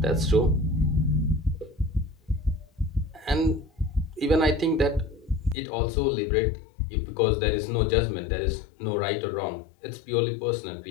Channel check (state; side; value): drops out; right; at 5.6 s